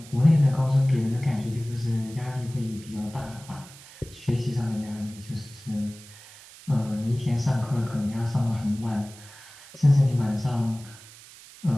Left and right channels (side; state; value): right; noise; hiss, 20 dB below the sound